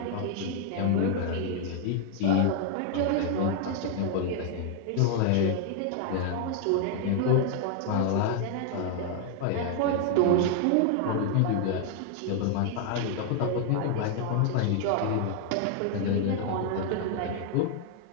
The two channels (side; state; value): both; different; correlation 0.00